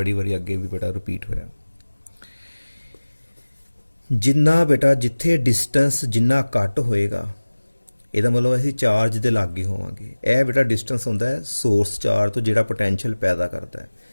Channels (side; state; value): both; inverted; correlation -1.00